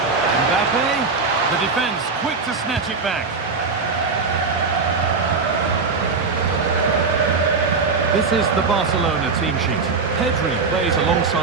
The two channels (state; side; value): quieter; left; 4.6 dB